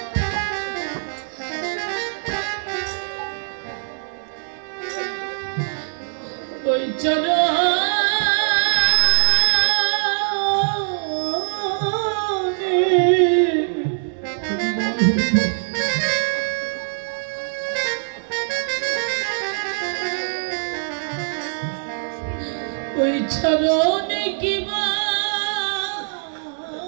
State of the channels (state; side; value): silent; left; digital silence